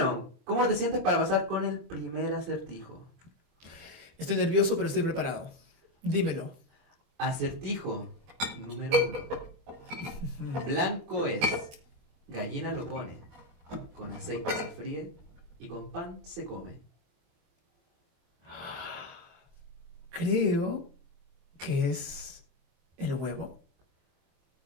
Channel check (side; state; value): left; late; 23 ms